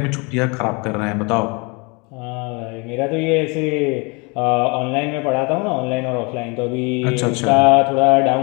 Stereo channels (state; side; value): quieter; right; 29.9 dB